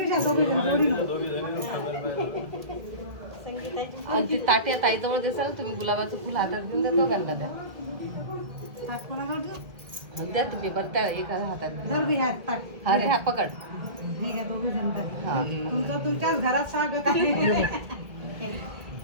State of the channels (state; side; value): late; left; 1.7 ms